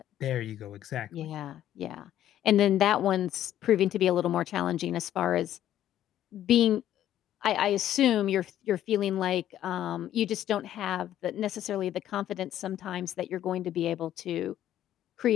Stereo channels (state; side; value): quieter; right; 11.9 dB